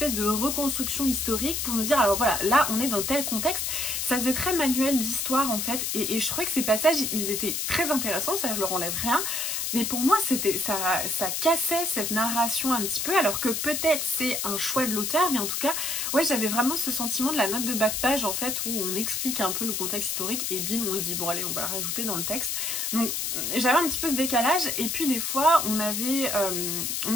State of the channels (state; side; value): noise; left; hiss, 1 dB below the sound